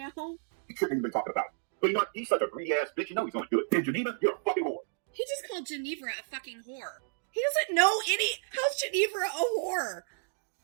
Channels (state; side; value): silent; left; digital silence